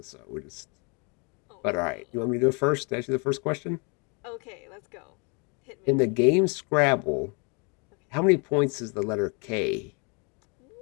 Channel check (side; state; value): right; quieter; 33.4 dB